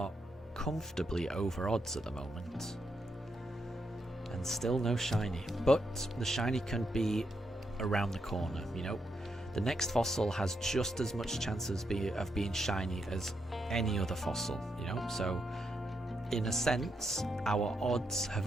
comfortably over odds at the moment. And still no shiny. But the shiny can be around the corner, you know. The next fossil has just as much chance of being shiny as any other fossil, you know. So, in a sense, our odds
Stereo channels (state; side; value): normal; both; correlation 0.81